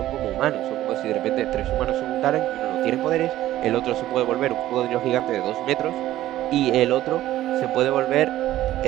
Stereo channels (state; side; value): quieter; left; 14.2 dB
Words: como humanos, son como si de repente 3 humanos se juntaran y uno no tiene poderes, el otro se puede volver un cocodrilo gigante de 2 metros y el otro se puede volver,